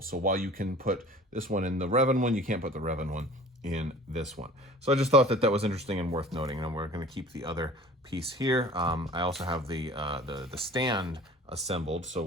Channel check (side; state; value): both; normal; correlation 0.45